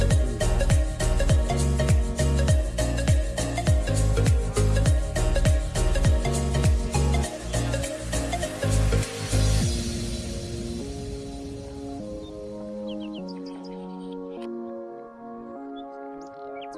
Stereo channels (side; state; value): both; identical; correlation 1.00